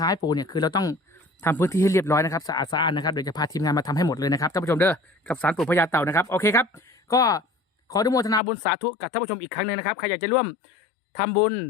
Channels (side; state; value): right; drops out; at 8.4 s